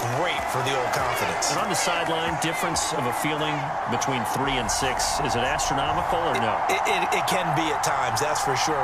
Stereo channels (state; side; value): identical; both; correlation 1.00